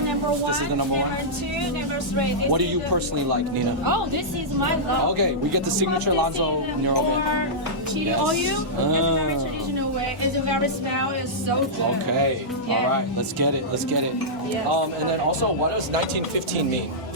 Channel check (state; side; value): normal; both; correlation -0.12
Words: number one. This is the number one? Number two, number three. This What do is you the- personally like, Nina? Oh, this is my love. Okay, we get the signature Lanzhou Noodle Mian. Or chili Yes. oil. It's a very Ah. traditional way. It's a very smell. It's so good. Okay, Yeah. all right, let's get it. Yes. And then also, what does 1915 mean?